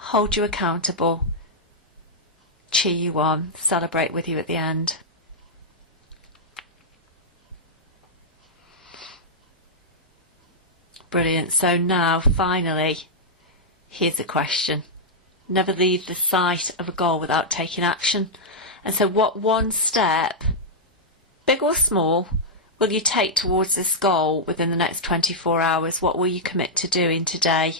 you accountable, cheer you on, celebrate with you at the end. Brilliant. So now, finally, here's a question. Never leave the sight of a goal without taking action. And so what one step, big or small, will you take towards this goal within the next 24 hours? What will you commit to doing today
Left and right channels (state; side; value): normal; both; correlation -0.06